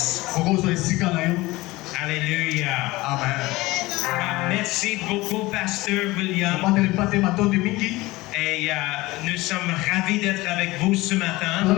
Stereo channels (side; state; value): right; quieter; 20.3 dB